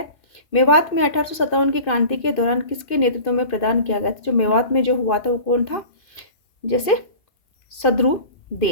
मेवात में 1857 की क्रांति के दौरान किसके नेतृत्व में प्रदान किया गया था? जो मेवात में जो हुआ था वो कौन था? जैसे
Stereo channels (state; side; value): late; right; 2.9 ms